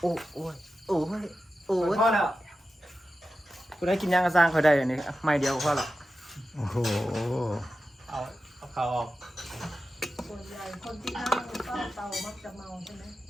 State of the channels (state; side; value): normal; both; correlation 0.92